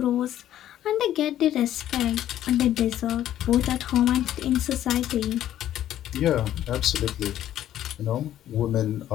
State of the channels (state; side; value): quieter; right; 12.0 dB